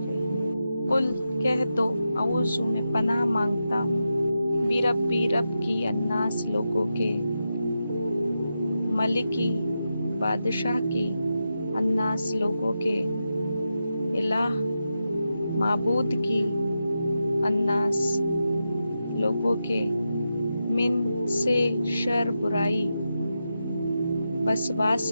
रहीम। कुल कह दो, औज़ु में पनाह मांगता हूँ, बिरब्बी रब की, अन्नास लोगों के, मलिकी बादशाह की, अन्नास लोगों के, इलाह माबूद की, अन्नास लोगों के, मिन से शर बुराई,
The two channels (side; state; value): both; inverted; correlation -0.88